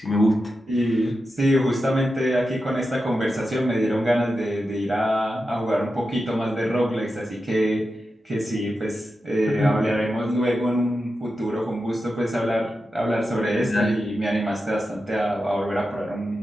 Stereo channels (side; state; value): both; normal; correlation 0.90